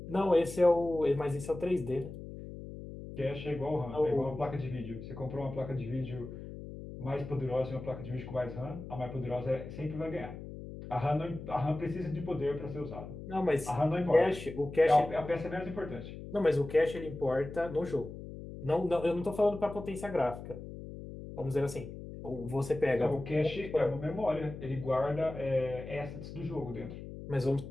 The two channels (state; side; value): noise; left; hum, 11 dB below the sound